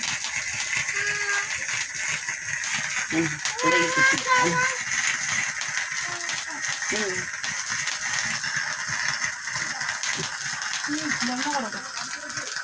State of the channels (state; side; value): identical; both; correlation 1.00